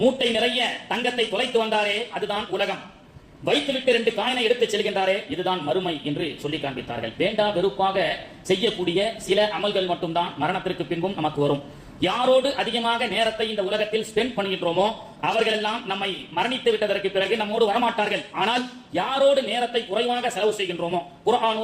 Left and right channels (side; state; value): both; identical; correlation 1.00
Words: மூட்டை நிறைய தங்கத்தை தொலைத்து வந்தாரே அதுதான் உலகம், வைத்துவிட்டு 2 காயினை எடுத்து செல்கின்றாரே இதுதான் மறுமை என்று சொல்லி காண்பித்தார்கள். வேண்டா வெறுப்பாக செய்யக்கூடிய சில அமல்கள் மட்டும்தான் மரணத்திற்கு பின்பும் நமக்கு வரும். யாரோடு அதிகமாக நேரத்தை இந்த உலகத்தில் ஸ்பெண்ட் பண்ணுகின்றோமோ அவர்கள் எல்லாம் நம்மை மரணித்து விட்டதற்கு பிறகு நம்மோடு வரமாட்டார்கள். ஆனால் யாரோடு நேரத்தை குறைவாக செலவு செய்கின்றோமோ,